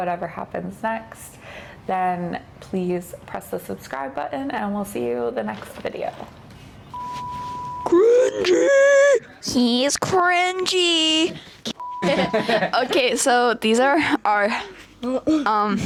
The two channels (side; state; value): both; identical; correlation 1.00